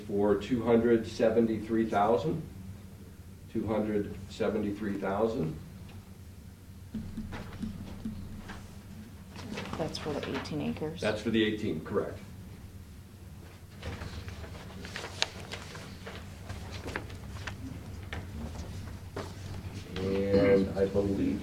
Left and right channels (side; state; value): both; identical; correlation 1.00